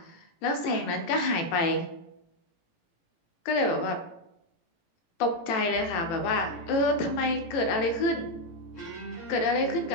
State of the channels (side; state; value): right; late; 18 ms